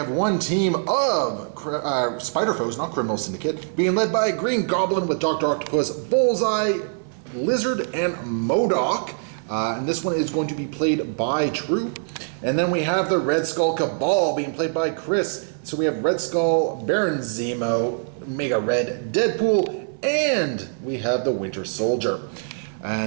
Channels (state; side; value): silent; left; 57 dB below the other